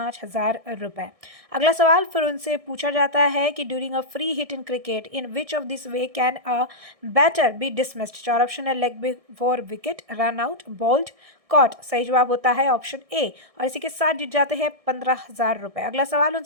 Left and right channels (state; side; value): late; left; 1.6 ms